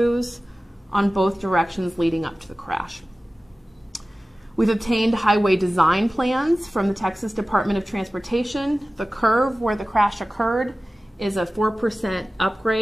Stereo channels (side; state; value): both; normal; correlation 0.96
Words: on both directions leading up to the crash. We've obtained highway design plans from the Texas Department of Transportation. The curve where the crash occurred is a 4%